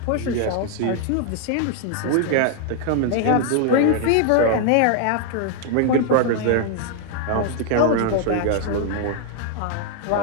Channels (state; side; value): different; both; correlation 0.00